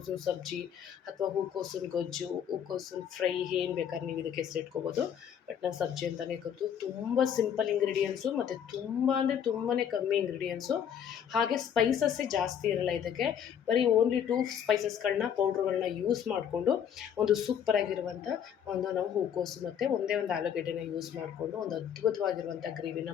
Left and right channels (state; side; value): quieter; right; 8.6 dB